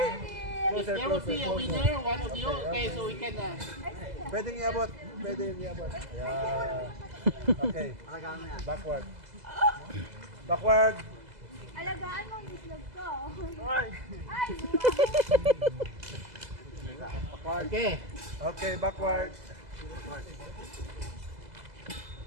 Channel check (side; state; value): left; late; 2.0 ms